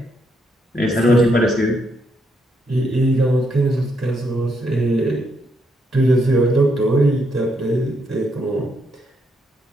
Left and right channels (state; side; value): normal; both; correlation 0.77